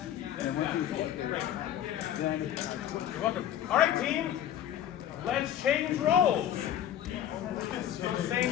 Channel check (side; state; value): right; quieter; 10.9 dB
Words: You're welcome. All right, team. Let's change roles. So